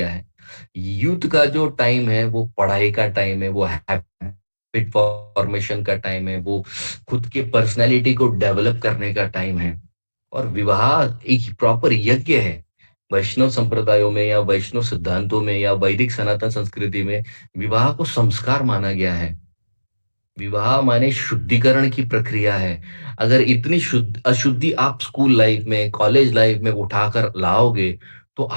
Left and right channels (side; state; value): both; inverted; correlation -1.00